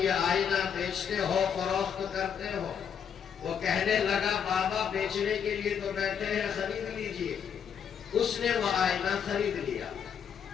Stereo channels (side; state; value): right; quieter; 7.7 dB